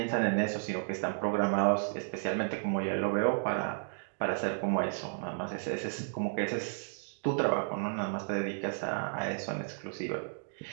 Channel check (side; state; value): left; silent; digital silence